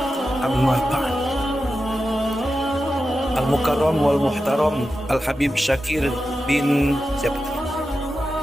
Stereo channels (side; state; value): both; normal; correlation 0.91